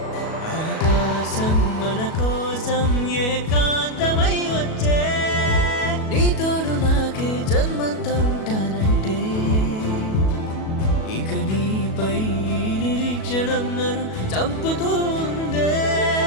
ఆకాశం మన కోసం ఏకాంతమై వచ్చే నీ తోడు నాకే జన్మంతా ఉంటానంటే ఇక నీపై నిరీక్షణం నన్ను చంపుతూ ఉందే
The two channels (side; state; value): right; late; 37 ms